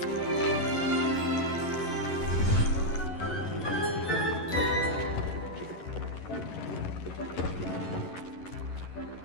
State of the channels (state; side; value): late; right; 11 ms